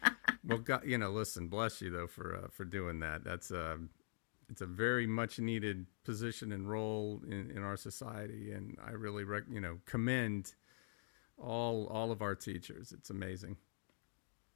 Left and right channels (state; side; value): silent; right; digital silence